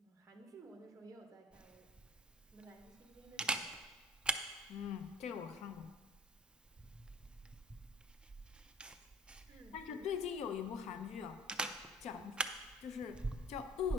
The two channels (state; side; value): normal; both; correlation 0.46